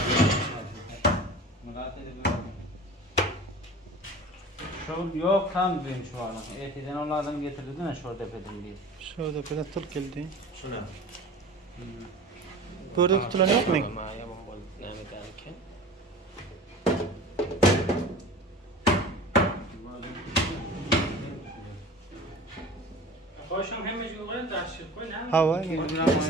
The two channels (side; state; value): both; normal; correlation 0.39